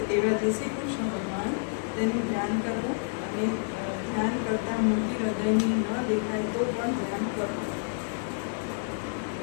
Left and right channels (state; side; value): silent; right; digital silence